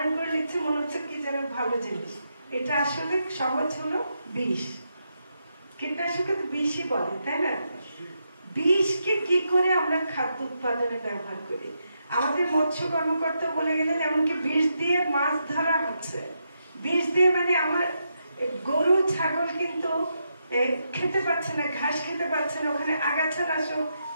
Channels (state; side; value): inverted; both; correlation -0.83